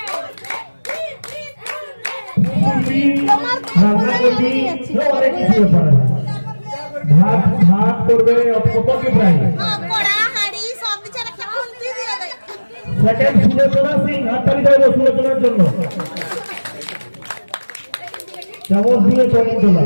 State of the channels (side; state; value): both; inverted; correlation -1.00